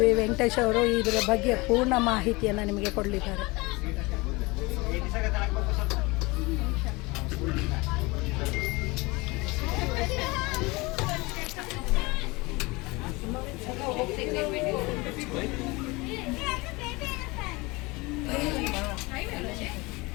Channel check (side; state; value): right; quieter; 24.2 dB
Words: ವೆಂಕಟೇಶ್ ಅವರು ಇದರ ಬಗ್ಗೆ ಪೂರ್ಣ ಮಾಹಿತಿಯನ್ನು ನಿಮಗೆ ಕೊಡಲಿದ್ದಾರೆ.